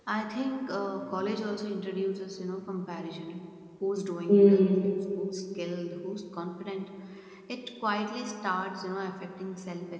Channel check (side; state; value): both; identical; correlation 1.00